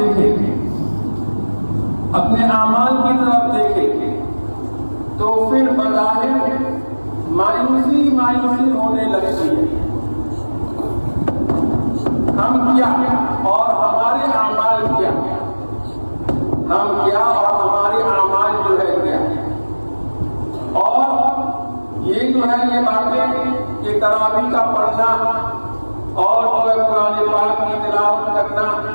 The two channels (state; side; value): inverted; both; correlation -1.00